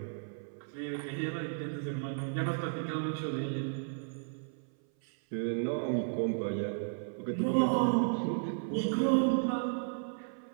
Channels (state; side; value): silent; left; 55 dB below the other